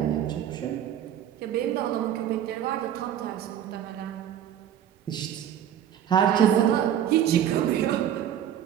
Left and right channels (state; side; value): quieter; left; 10.2 dB